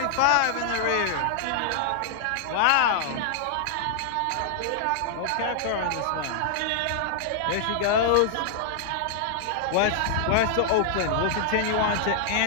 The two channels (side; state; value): both; different; correlation -0.01